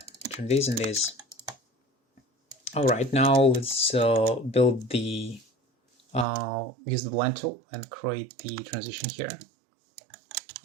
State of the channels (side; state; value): left; drops out; at 6.2 s